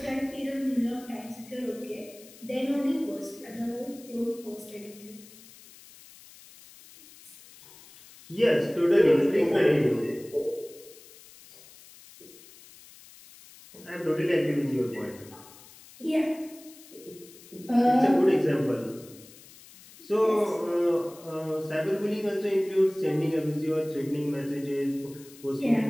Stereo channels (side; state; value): left; noise; hiss, 21 dB below the sound